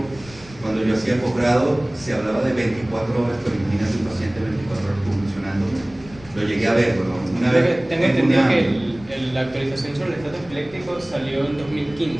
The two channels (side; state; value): left; noise; rumble, 20 dB below the sound